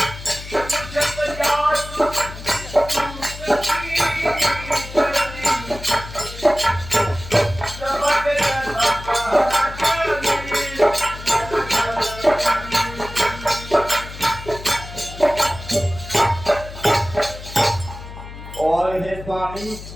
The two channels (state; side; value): noise; left; hum, 13 dB below the sound